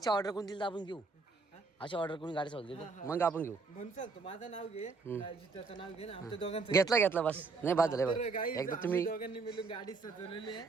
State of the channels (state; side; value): quieter; left; 4.2 dB